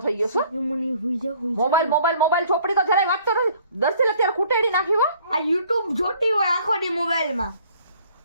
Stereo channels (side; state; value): both; inverted; correlation -0.57